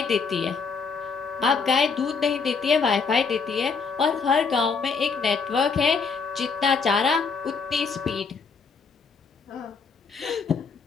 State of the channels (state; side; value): quieter; right; 5.2 dB